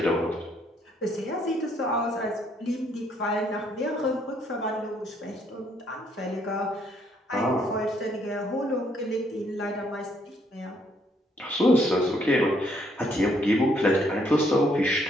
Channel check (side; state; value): both; normal; correlation 0.69